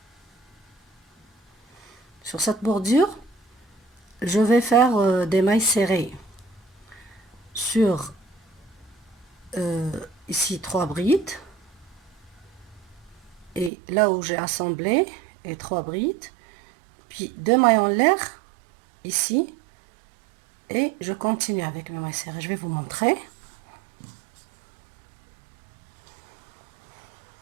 Sur cette bordure, je vais faire des mailles serrées. Sur ici 3 brides. Et là où j'ai assemblé, et 3 brides. Puis 2 mailles en l'air, ici. Et je continue avec mes mailles serrées. Je vais vous montrer.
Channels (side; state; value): left; drops out; at 13.7 s